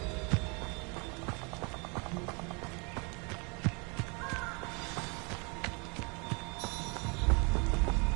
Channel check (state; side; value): quieter; left; 31.8 dB